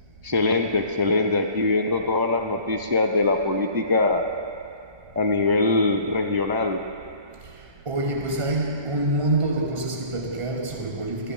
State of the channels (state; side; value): late; left; 1.3 ms